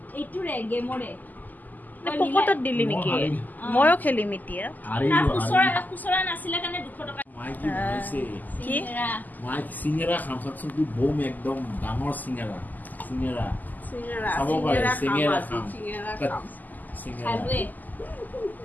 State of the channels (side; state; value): right; late; 0.083 ms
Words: পকেটত দিলি নেকি? ময়ো খেলিম এতিয়া। চিঙেৰা খাম চাকচোন, বম একদম ডাঙৰ চিঙেৰা চাব পাৰে। চিঙেৰা খাম।